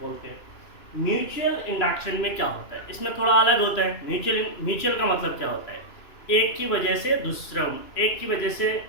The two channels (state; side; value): late; right; 2.9 ms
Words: बोलते हैं. म्यूचुअल इंडक्शन में क्या होता है? इसमें थोड़ा अलग होता है. म्यूचुअल का मतलब क्या होता है? एक की वजह से